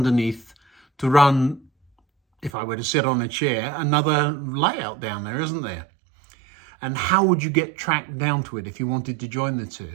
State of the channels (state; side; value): drops out; left; at 2.5 s